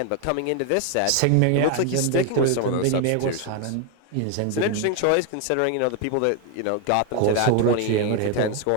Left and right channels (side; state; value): both; different; correlation 0.01